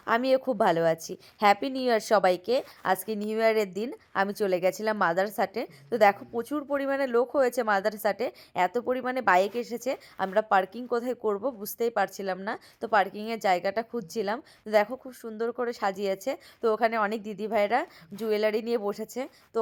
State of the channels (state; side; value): identical; both; correlation 1.00